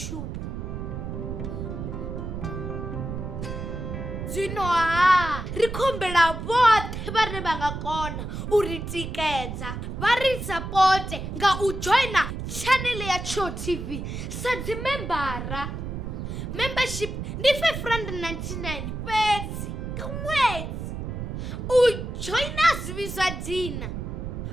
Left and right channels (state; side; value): noise; right; rumble, 6 dB below the sound